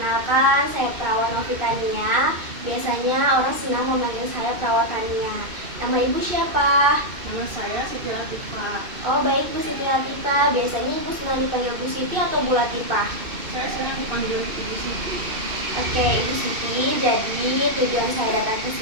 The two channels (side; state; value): left; late; 2.6 ms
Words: saya Perawat Novitania. Biasanya orang senang memanggil saya Perawat Tania. Nama Ibu siapa? Nama saya Siti Latifah. Oh baik, Bu Siti Latifah. Biasanya Ibu senang dipanggil Bu Siti atau Bu Latifah? Saya senang dipanggil Ibu Siti. Oke, Ibu Siti. Jadi tujuan saya datang ke